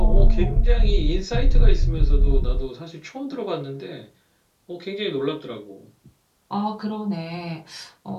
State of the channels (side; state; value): both; identical; correlation 1.00